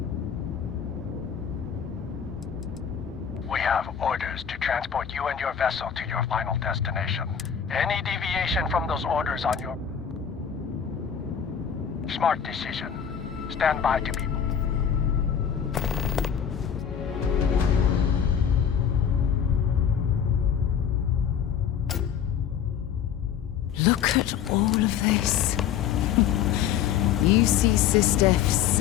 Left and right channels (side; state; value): right; quieter; 8.3 dB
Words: We have orders to transport you and your vessel to your final destination. Any deviation from those orders on your... Smart decision. Stand by to be... Look at all of this. UC Sistef